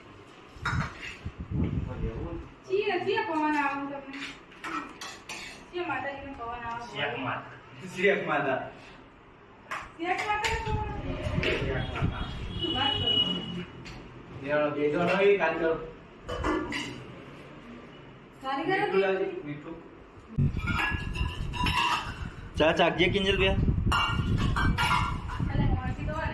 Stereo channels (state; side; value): identical; both; correlation 1.00